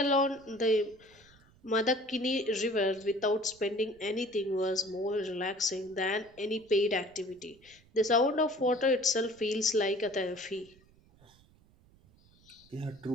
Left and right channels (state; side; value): noise; right; rumble, 29 dB below the sound